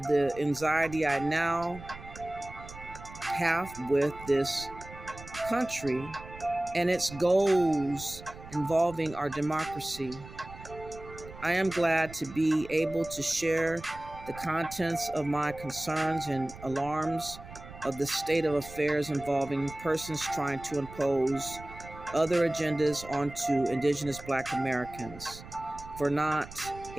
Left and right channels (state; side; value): noise; right; rumble, 16 dB below the sound